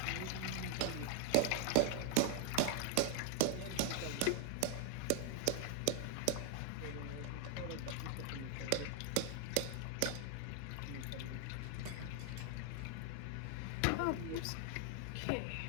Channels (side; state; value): both; different; correlation 0.00